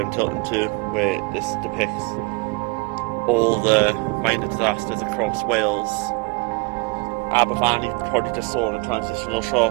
tilting to where this depicts all the mining disasters across Wales. Aber Valley, you probably just saw in a transitional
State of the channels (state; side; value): quieter; left; 27.9 dB